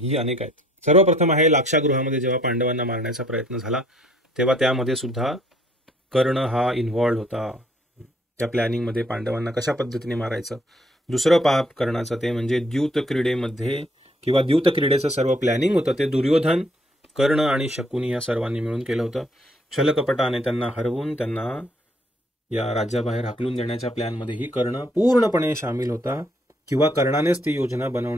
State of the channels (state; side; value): normal; both; correlation 0.65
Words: अनेक आहेत. सर्वप्रथम आहे लाक्षागृहामध्ये जेव्हा पांडवांना मारण्याचा प्रयत्न झाला, तेव्हा त्यामध्ये सुद्धा कर्ण हा इन्व्हॉल्ड होता, त्या प्लॅनिंगमध्ये पांडवांना कशा पद्धतीने मारायचं. दुसरं पाप कर्णाचं ते म्हणजे द्यूत क्रीडेमध्ये किंवा द्यूत क्रीडेचं सर्व प्लॅनिंग होतं ते दुर्योधन, कर्ण आणि शकुनी या सर्वांनी मिळून केलं होतं. छलकपटाने त्यांना हरवून त्यांना या राज्याबाहेर हाकलून देण्याच्या प्लॅनमध्येही कर्ण पूर्णपणे सामील होता, किंवा कर्णानेच ती योजना